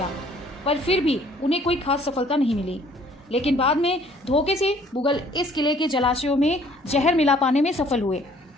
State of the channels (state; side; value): normal; both; correlation 0.58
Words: पर फिर भी उन्हें कोई खास सफलता नहीं मिली। लेकिन बाद में धोखे से मुगल इस किले के जलाशयों में जहर मिला पाने में सफल हुए,